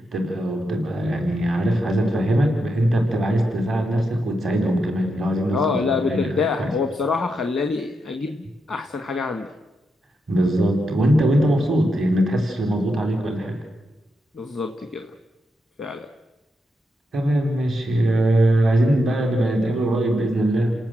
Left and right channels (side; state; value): both; normal; correlation 0.84